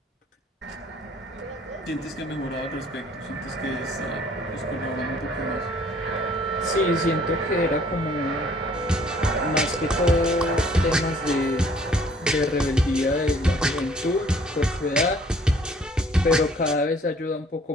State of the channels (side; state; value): both; normal; correlation 0.58